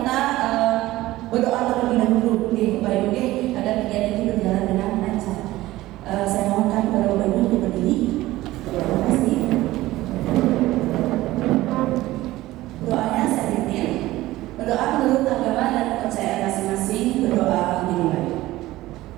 berdoa terlebih dahulu, Bapak Ibu, agar kegiatan ini berjalan dengan lancar. Saya mohonkan kepada Bapak Ibu untuk berdiri. Terima kasih. Doanya saya pimpin. Berdoa menurut agama dan kepercayaan masing-masing. Berdoa dimulai.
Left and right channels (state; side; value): quieter; left; 17.1 dB